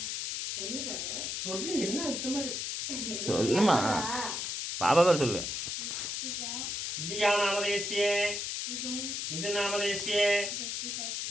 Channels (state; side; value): noise; left; hiss, 3 dB below the sound